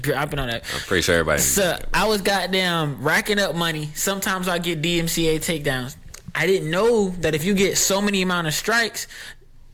dropping on that. I'm pretty sure everybody. So I was goddamn racking up money. Sometimes I get DMCA takedowns. I didn't know that if you get so many amount of strikes,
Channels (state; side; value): identical; both; correlation 1.00